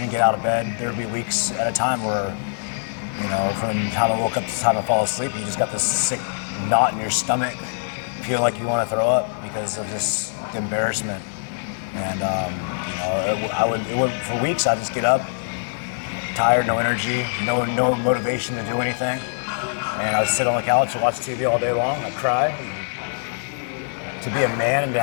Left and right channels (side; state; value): right; silent; digital silence